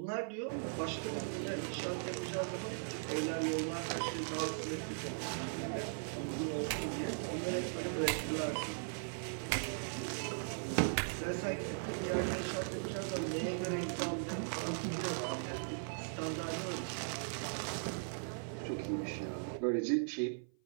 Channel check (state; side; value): silent; left; 52 dB below the other